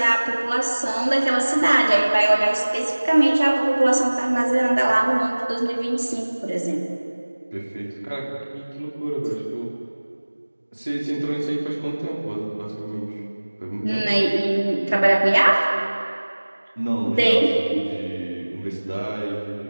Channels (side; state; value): both; inverted; correlation -1.00